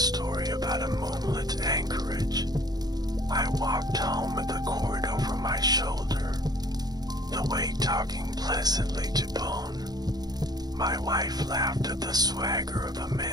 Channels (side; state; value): left; late; 0.19 ms